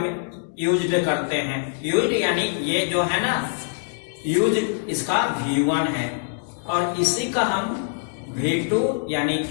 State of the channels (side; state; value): right; silent; digital silence